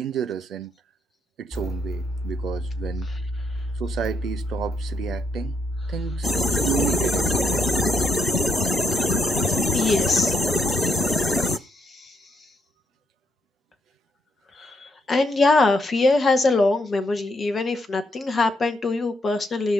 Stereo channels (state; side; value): normal; both; correlation 0.76